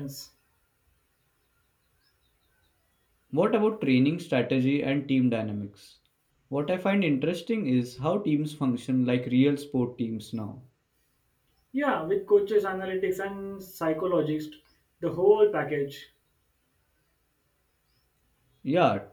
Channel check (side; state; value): both; identical; correlation 1.00